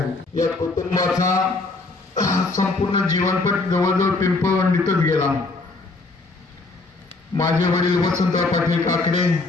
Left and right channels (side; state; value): right; quieter; 3.5 dB